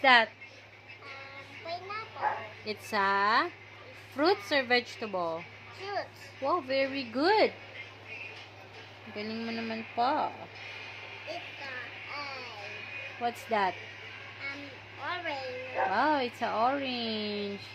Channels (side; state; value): both; identical; correlation 1.00